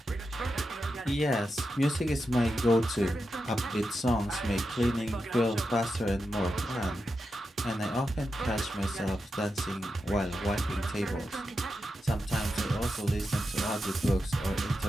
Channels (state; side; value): normal; both; correlation 0.88